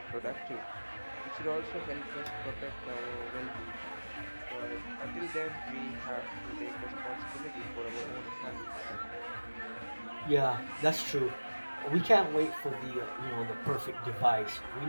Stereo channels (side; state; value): both; inverted; correlation -1.00